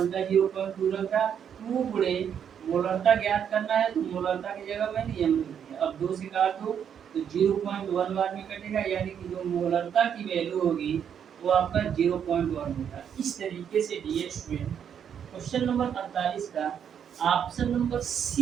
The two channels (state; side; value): quieter; left; 8.3 dB